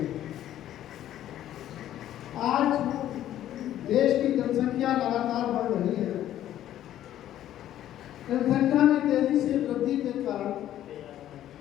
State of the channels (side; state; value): right; quieter; 12.2 dB